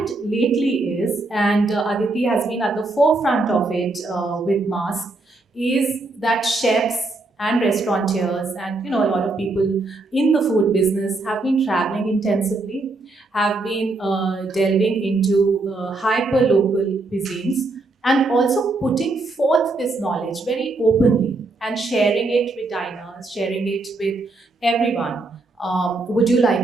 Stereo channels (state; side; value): quieter; left; 3.2 dB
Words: lately is, and Aditi has been at the forefront of it with Mask, is that chefs and restaurateurs and a lot of people in the food business have been traveling intensively, have been delving into hyper local cuisines, and also putting forth this knowledge very openly and sharing it with diners, sharing it with everyone. Would you